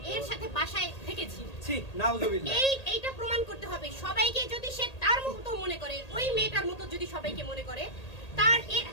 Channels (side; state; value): right; late; 1.8 ms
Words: এর সাথে বাসায় থেকেছি। এইটা প্রমাণ করতে হবে সবাইকে। যদি সে তার মতো মনে করে, ওই মেয়েটার মতো যদি সবাইকে মনে করে, তার